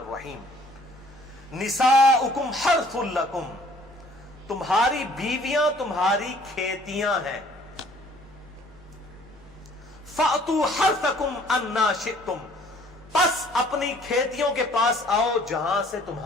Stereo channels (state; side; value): normal; both; correlation 0.57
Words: نساؤکم حرث لکم، تمہاری بیویاں تمہاری کھیتیاں ہیں۔ فأتوا حرثکم انا شئتم، پس اپنی کھیتیوں کے پاس آؤ جہاں سے